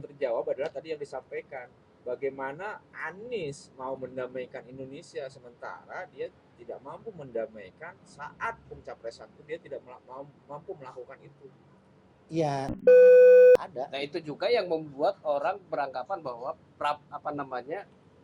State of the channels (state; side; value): identical; both; correlation 1.00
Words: terjawab adalah tadi yang disampaikan. Bagaimana Anies mau mendamaikan Indonesia sementara dia tidak mampu mendamaikan saat pencapresan itu dia tidak mampu melakukan itu. Iya, ada. Nah itu juga yang membuat orang beranggapan bahwa